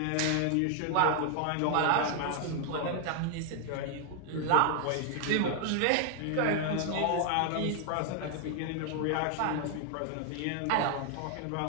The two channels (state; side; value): different; both; correlation 0.00